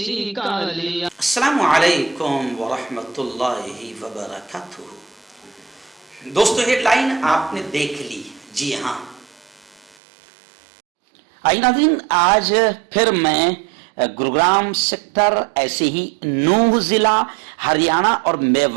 کا لیا۔ السلام علیکم ورحمۃ اللہ وبرکاتہ۔ دوستو ہیڈ لائن آپ نے دیکھ لی، جی ہاں۔ آئی ناظرین، آج پھر میں گروگرام سیکٹر، ایسے ہی نوح ضلع، ہریانہ اور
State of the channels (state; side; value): drops out; left; at 10.0 s